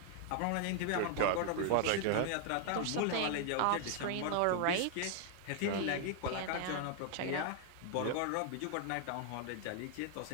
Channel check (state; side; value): different; both; correlation 0.00